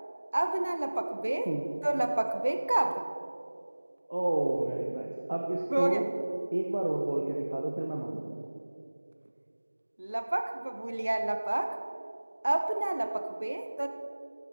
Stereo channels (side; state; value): both; inverted; correlation -1.00